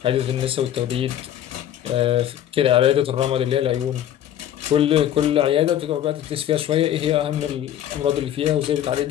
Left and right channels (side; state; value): right; quieter; 11.0 dB